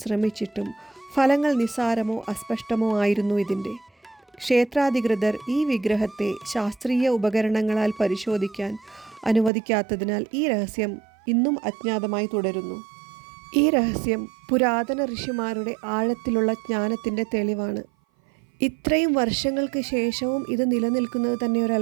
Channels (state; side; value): drops out; left; at 9.5 s